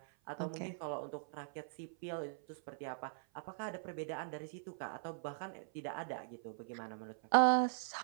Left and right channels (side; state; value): left; silent; 50 dB below the other